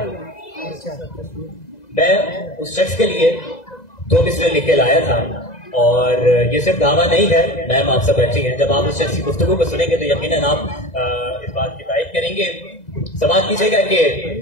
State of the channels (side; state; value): right; late; 2.0 ms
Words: मैं उस शख्स के लिए 2 मिसरे लिख के लाया था और ये सिर्फ दावा नहीं है, मैम आप सब बैठी हैं। जब आप उस शख्स की गुफ्तगू को सुनेंगे तो यकीनन आप इस बात की तारीफ करेंगे। समाज कीजिएगा कि